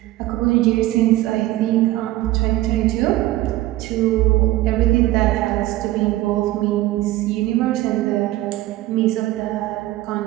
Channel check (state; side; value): quieter; left; 16.5 dB